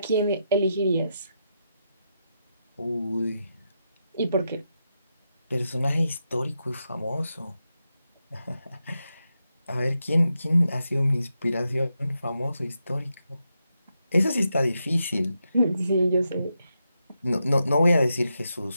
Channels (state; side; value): inverted; both; correlation -0.85